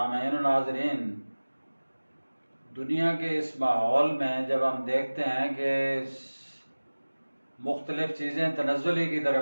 و ناظرین، دنیا کے اس ماحول میں جب ہم دیکھتے ہیں کہ مختلف چیزیں تنزلی کی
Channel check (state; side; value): inverted; both; correlation -1.00